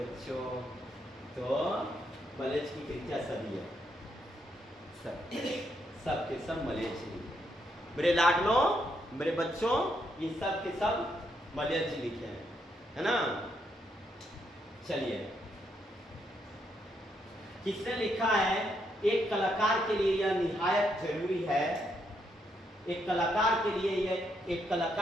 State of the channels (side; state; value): both; normal; correlation 0.77